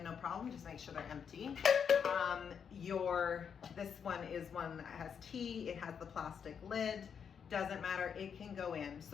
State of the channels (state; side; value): quieter; right; 7.2 dB